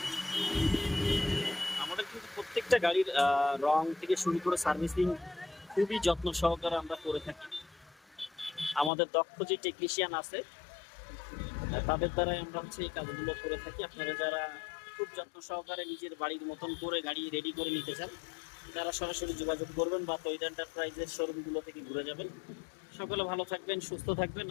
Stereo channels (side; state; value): right; drops out; at 8.9 s